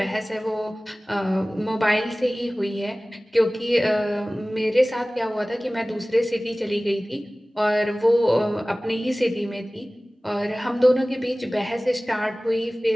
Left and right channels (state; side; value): normal; both; correlation 0.98